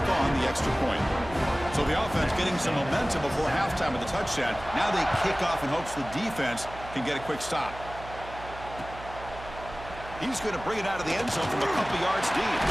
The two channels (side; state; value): right; noise; hum, 14 dB below the sound